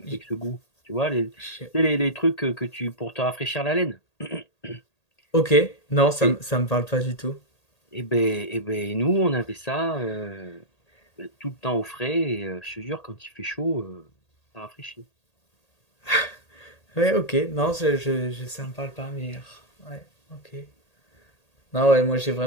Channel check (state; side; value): late; right; 1.8 ms